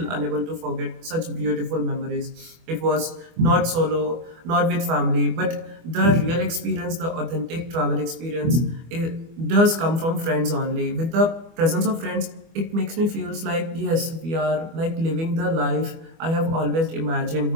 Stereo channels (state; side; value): late; left; 24 ms